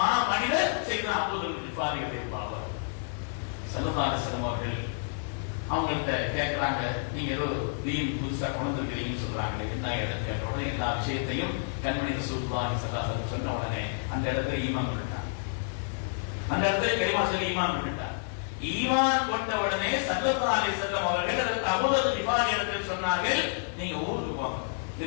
மனிதர் சையதுனா அபூதர் கிஃபாரியுடைய பாவர். ஸல்லல்லாஹு அலைஹி வஸல்லம் அவர்கள் அவங்கள்ட்ட கேட்கிறாங்க, நீங்க ஏதோ தீன் புதுசா கொண்டு இருக்கிறீங்கன்னு சொல்றாங்க, என்ன இடத்துல கேட்ட உடனே எல்லா விஷயத்தையும் கண்மணி ரசூலுல்லாஹி ஸல்லல்லாஹு அலைஹி வஸல்லம் சொன்ன உடனே அந்த இடத்துல ஈமான் கொண்டுட்டாங்க. அந்த இடத்துல கலிமா சொல்லி ஈமான் கொண்டுட்டாங்க. ஈமான் கொண்ட உடனே ஸல்லல்லாஹு அலைஹி வஸல்லம் அவர்கள் அபூதர் கிஃபாரி இடத்தில் சொன்னார்கள், நீங்க ஊருக்கு போங்க,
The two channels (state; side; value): silent; right; 58 dB below the other